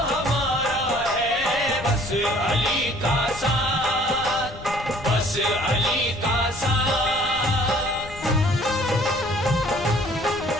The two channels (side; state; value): left; noise; rumble, 15 dB below the sound